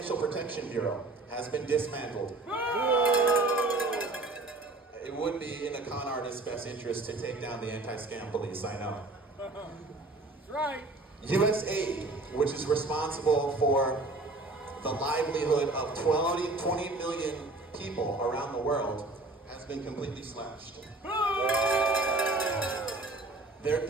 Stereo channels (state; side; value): quieter; left; 3.1 dB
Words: Protection Bureau has been dismantled. It would be in a con artist's best interest to take down the anti-scam police, I know. That's right. USAID, which is responsible for the livelihood of 20 million people around the world, has been completely slashed. Their